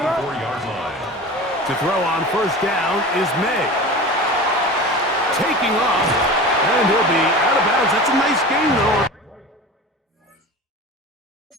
line. To throw on 1st down is May. Taking off, and he'll be out of bounds. That's a nice game, though.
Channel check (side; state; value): both; normal; correlation 0.34